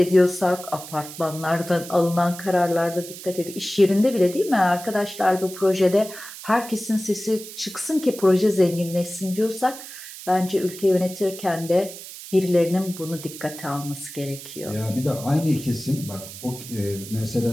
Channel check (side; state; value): right; noise; hiss, 13 dB below the sound